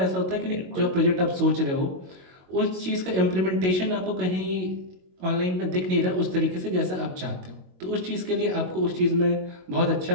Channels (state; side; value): late; left; 22 ms